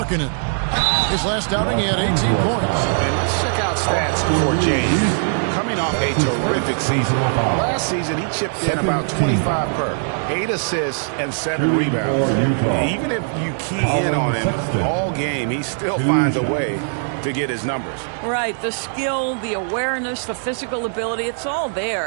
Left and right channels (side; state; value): left; silent; digital silence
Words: His last outing, he had 18 points. And let's check out stats for James. Coming off a terrific season. Last season, he chipped in about 25 per. 8 assists and 7 rebounds. Even if you key in on him all game, he still finds a way to get his numbers. Right, the skill, the awareness, the physical ability, it's all